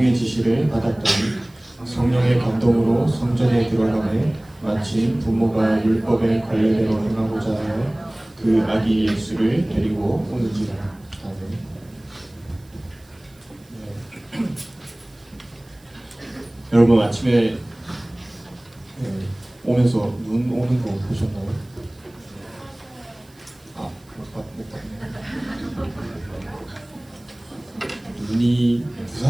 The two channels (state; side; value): noise; right; hiss, 30 dB below the sound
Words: 지시를 받았더니 성령의 감동으로 성전에 들어가매 마치 부모가 율법에 관례대로 행하고자 하여 그 아기 예수를 데리고 오는지라. 아멘. 여러분 아침에 오면서 눈 오는 거 보셨나요? 못 봤네. 눈이